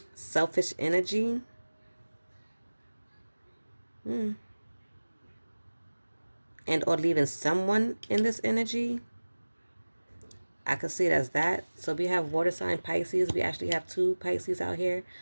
selfish energy. And or leaving someone in this energy. I could see it as that. So we have water sign Pisces. We actually have two Pisces out here.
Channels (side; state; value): both; inverted; correlation -1.00